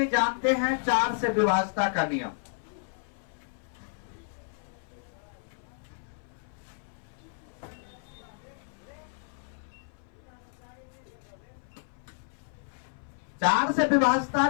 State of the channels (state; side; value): silent; right; 57 dB below the other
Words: जानते हैं 4 से विभाज्यता का नियम। चार से विभाज्यता